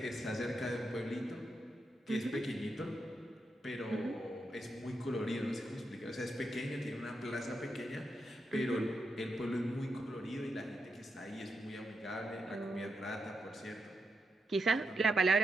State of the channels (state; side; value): normal; both; correlation 0.84